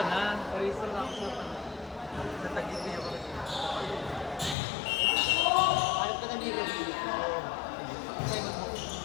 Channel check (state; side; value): drops out; right; at 4.5 s